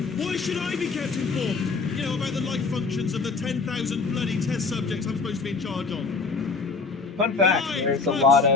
Why should I be kept informed? You know, about the life functions of the 10,000 bloody test subjects I'm supposed to be in charge of. Fun fact, Right, there's a close. lot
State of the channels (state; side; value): quieter; right; 4.3 dB